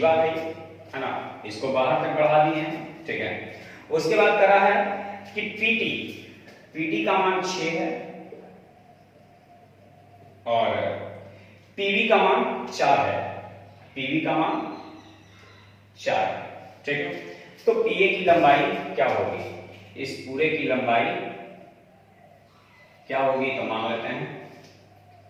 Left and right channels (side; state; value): both; identical; correlation 1.00